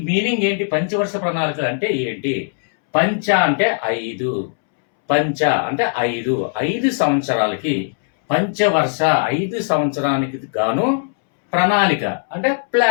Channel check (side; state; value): right; silent; 67 dB below the other